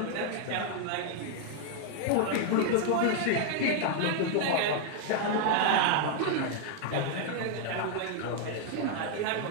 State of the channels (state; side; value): different; both; correlation 0.00